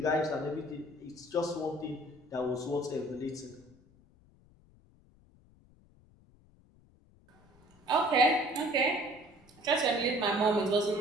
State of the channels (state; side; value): noise; left; rumble, 28 dB below the sound